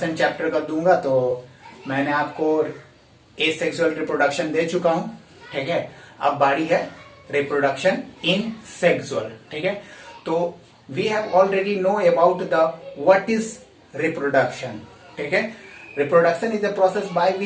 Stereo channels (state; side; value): identical; both; correlation 1.00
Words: चैप्टर का दूंगा, तो मैंने आपको एसेक्सुअल रिप्रोडक्शन दे चुका हूँ। ठीक है, अब बारी है रिप्रोडक्शन इन सेक्सुअल। ठीक है, तो we have already know about the what is reproduction. ठीक है, reproduction is a process by